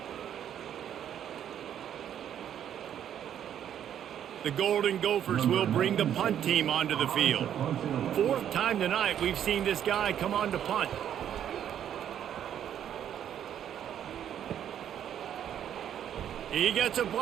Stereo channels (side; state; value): left; quieter; 9.9 dB